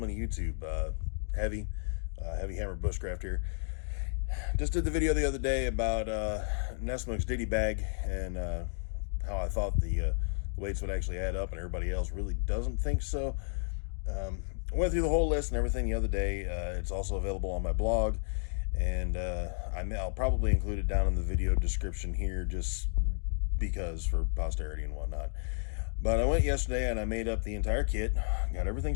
of YouTube. Heavy Hammer Bushcraft here. Just did the video the other day about Nessmuk's ditty-bag and how I thought the weights would actually add up, and everybody else really doesn't think so. Went through the whole list and everything the other day. It's also available on my blog, and I'll probably include it down in the video description here just because for posterity and whatnot. But I went yesterday and I made up the entire kit, got everything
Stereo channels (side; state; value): right; silent; 56 dB below the other